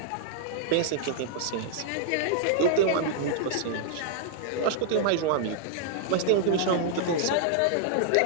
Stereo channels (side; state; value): both; different; correlation -0.01